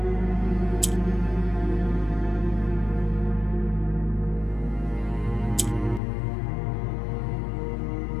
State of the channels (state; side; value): drops out; right; at 6.0 s